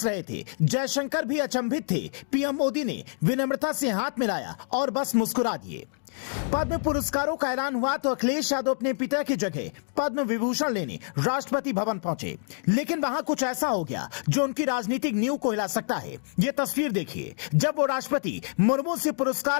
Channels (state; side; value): silent; right; 60 dB below the other